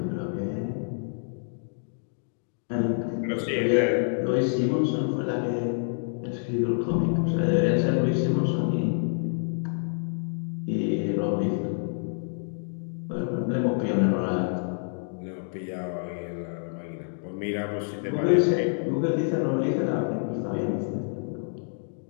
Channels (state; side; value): silent; right; digital silence